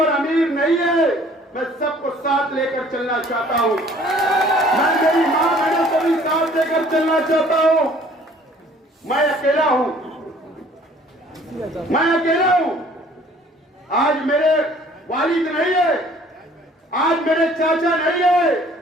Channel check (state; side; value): normal; both; correlation 0.55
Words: अमीर नहीं है। मैं सबको साथ लेकर चलना चाहता हूं। मैं मेरी मां बहनों को भी साथ लेकर चलना चाहता हूं। मैं अकेला हूं, मैं अकेला हूं। आज मेरे वालिद नहीं है, आज मेरे चाचा नहीं है,